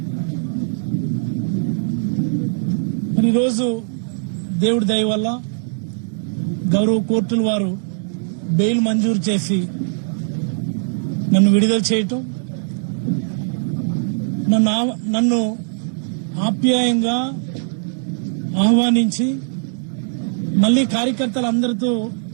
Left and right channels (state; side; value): silent; left; digital silence